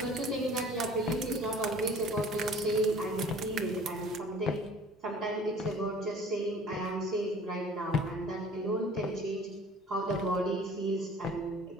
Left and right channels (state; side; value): normal; both; correlation 0.48